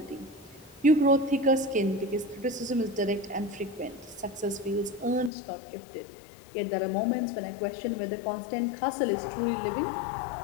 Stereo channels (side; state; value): right; drops out; at 5.3 s